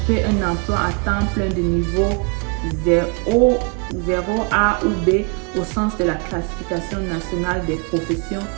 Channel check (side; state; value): left; quieter; 34.7 dB